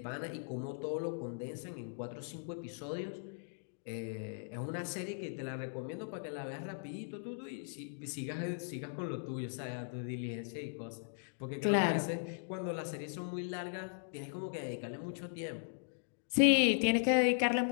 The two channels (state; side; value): silent; right; digital silence